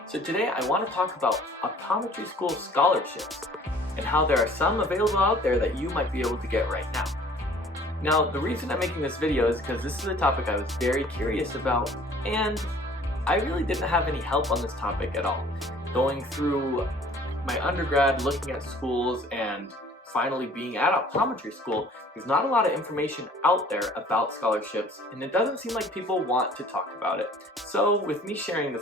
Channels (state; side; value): normal; both; correlation 0.52